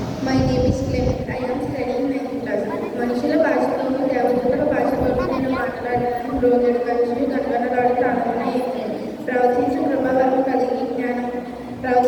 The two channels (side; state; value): both; identical; correlation 1.00